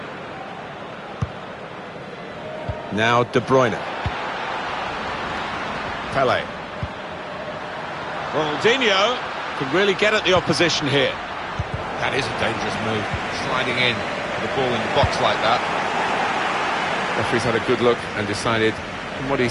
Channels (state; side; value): identical; both; correlation 1.00